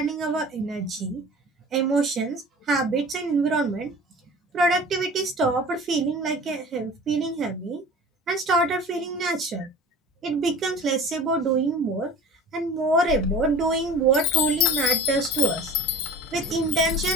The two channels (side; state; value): both; normal; correlation 0.40